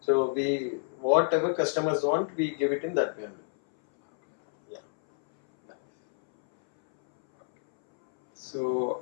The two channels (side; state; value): right; silent; 60 dB below the other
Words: So we, whatever customers want, we give it in that way only. Yeah.